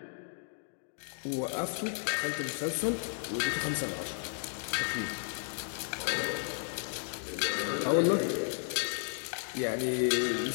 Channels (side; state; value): right; silent; digital silence